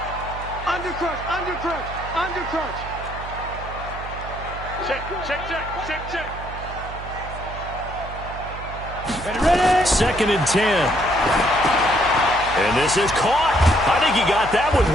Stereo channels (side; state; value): right; noise; hum, 11 dB below the sound